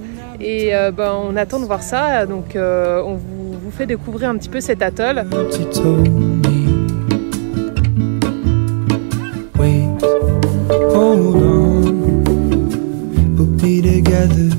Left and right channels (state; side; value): silent; left; digital silence